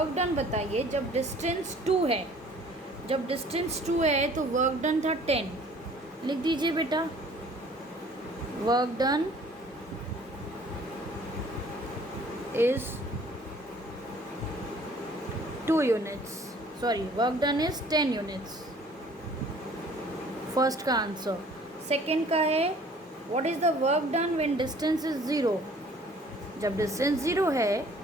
डन बताइए जब डिस्टेंस 2 है, जब डिस्टेंस 2 है तो वर्क डन था 10, लिख दीजिए बेटा, work done is 2 units, sorry work done is 10 units, first का आंसर। सेकेंड का है what is the work done when distance is 0, जब डिस्टेंस 0 है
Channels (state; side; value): normal; both; correlation 0.54